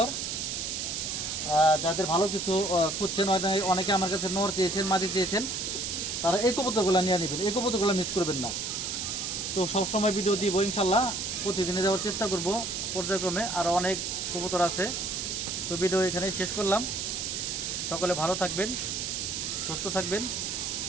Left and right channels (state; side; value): noise; right; hiss, 3 dB below the sound